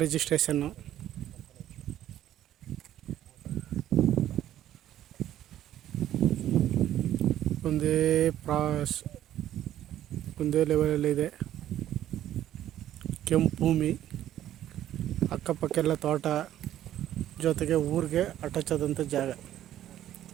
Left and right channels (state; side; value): quieter; left; 12.2 dB